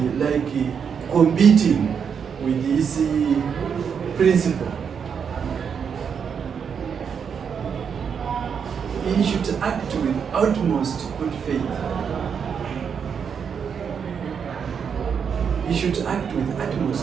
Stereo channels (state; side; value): quieter; left; 6.9 dB